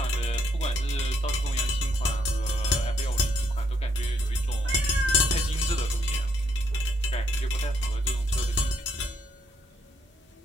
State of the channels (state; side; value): normal; both; correlation 0.73